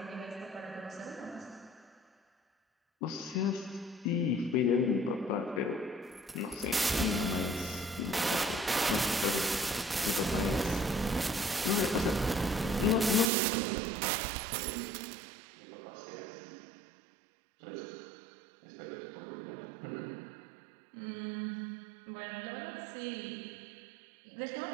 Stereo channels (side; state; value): left; drops out; at 13.3 s